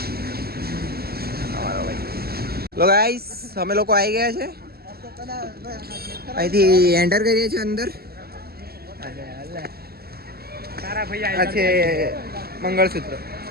લો ગાઈસ, અમે લોકો આવી ગયા છે. અહીંથી એન્ટર કરીએ છીએ અંદર. આ છે મંગળસૂત્ર.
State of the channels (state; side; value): late; left; 0.45 ms